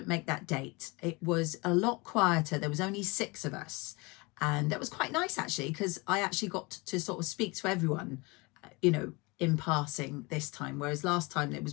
make that date. It was a lot quieter. There was only 6 of us, and that was quite nice actually, because I actually got to sort of speak to everyone, you know, in passing this time, whereas last time it was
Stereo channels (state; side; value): quieter; right; 26.3 dB